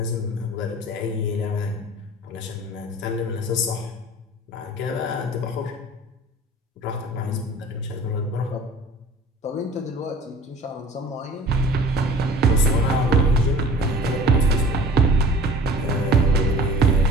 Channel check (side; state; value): both; normal; correlation 0.44